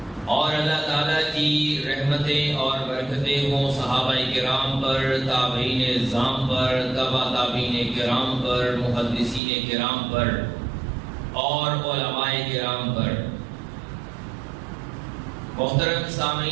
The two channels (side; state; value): left; drops out; at 9.4 s